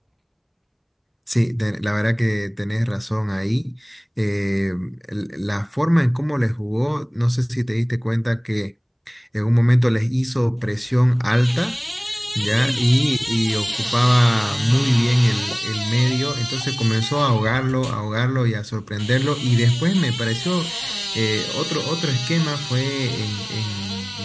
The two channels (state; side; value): identical; both; correlation 1.00